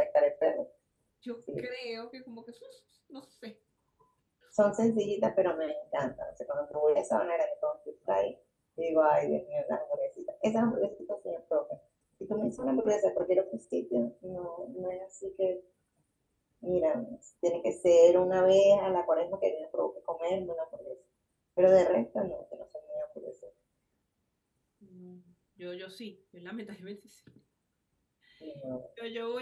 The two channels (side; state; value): both; identical; correlation 1.00